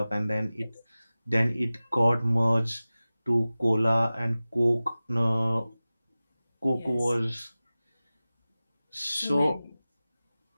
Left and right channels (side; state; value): both; inverted; correlation -0.97